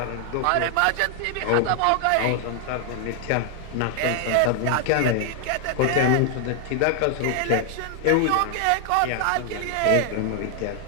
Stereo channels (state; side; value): different; both; correlation 0.00